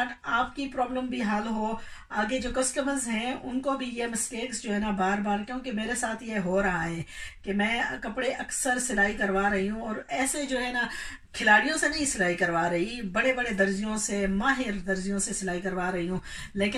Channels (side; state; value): both; identical; correlation 1.00